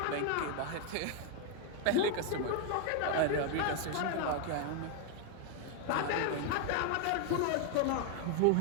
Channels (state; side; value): different; both; correlation 0.00